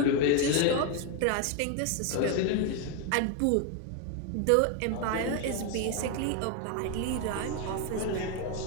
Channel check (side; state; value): both; different; correlation 0.01